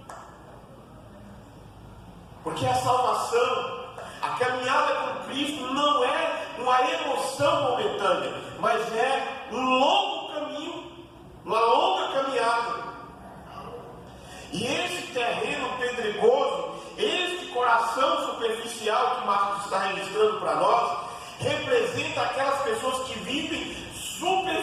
Porque a salvação, a caminhada com Cristo não é uma emoção momentânea, mas é um longo caminho, uma longa caminhada. E esse terreno pedregoso, este coração superficial que Marcos está registrando para nós, representa aquelas pessoas que vivem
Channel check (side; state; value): both; identical; correlation 1.00